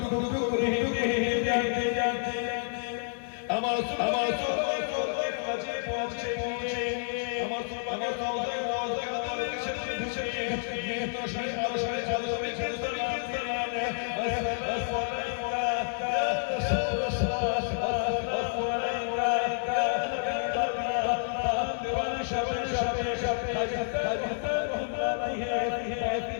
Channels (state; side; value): silent; right; digital silence